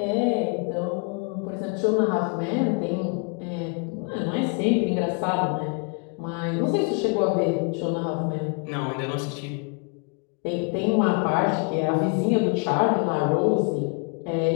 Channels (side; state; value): right; quieter; 35.5 dB